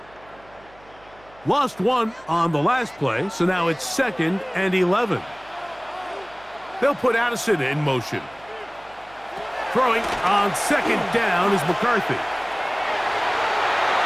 Lost one on the last play, so now it's 2nd and 11. They'll put Addison in motion. Throwing on 2nd down is McCarthy.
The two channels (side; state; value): right; noise; hum, 26 dB below the sound